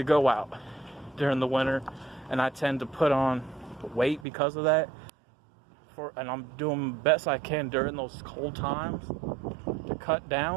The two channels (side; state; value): left; drops out; at 4.2 s